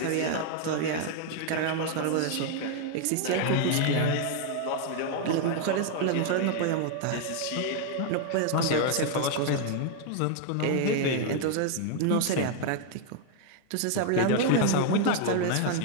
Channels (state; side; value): different; both; correlation 0.00